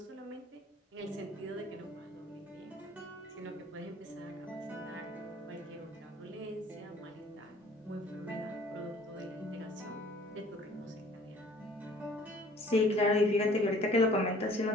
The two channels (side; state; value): both; normal; correlation 0.54